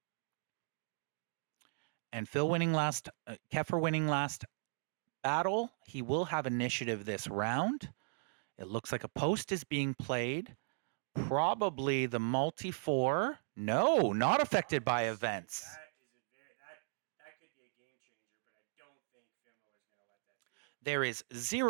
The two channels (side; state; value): left; silent; digital silence